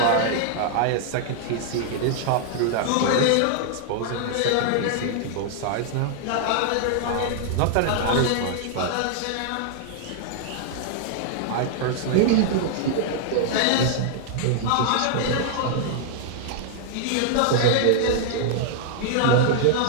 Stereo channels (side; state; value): both; different; correlation -0.01